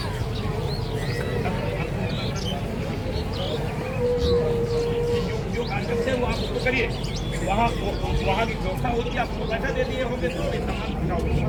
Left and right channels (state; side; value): identical; both; correlation 1.00